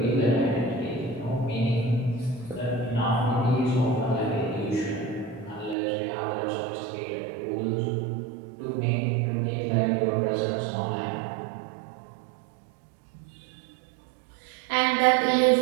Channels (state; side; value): drops out; left; at 5.8 s